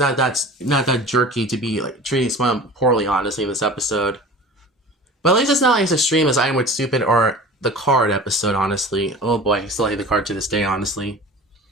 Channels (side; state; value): both; normal; correlation 0.38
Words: that jerky to be like treating Spongebob poorly, honestly, in this episode. But at least it's not like as extreme as I Am With Stupid or the Card episode, honestly. Oh boy, I still hate the Card to this day, honestly.